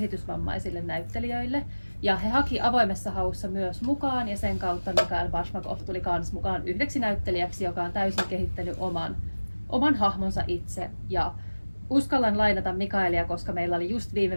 näyttelijöille. Ja he haki avoimessa haussa myös mukaan ja sen kautta Mikael Bashmakov tuli kans mukaan yhdeksi näyttelijäksi, joka on täysin kehittänyt oman hahmonsa itse. Ja uskallan lainata Mikaelia, koska meillä oli just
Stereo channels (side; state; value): both; inverted; correlation -1.00